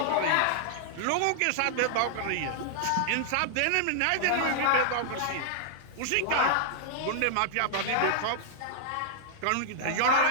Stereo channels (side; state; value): both; different; correlation -0.01